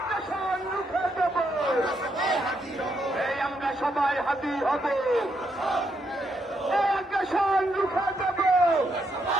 আমরা সবাই হাতি হব, আগ্রাসন রুখে দেব।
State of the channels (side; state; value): both; normal; correlation 0.78